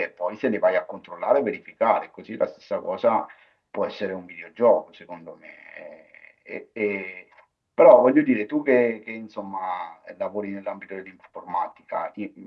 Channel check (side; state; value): both; identical; correlation 1.00